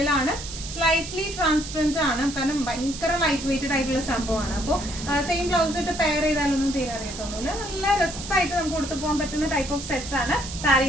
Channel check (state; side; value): noise; right; hiss, 10 dB below the sound